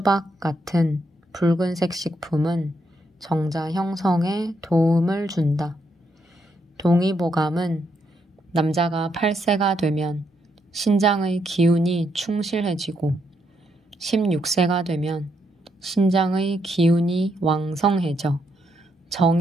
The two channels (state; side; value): normal; both; correlation 0.77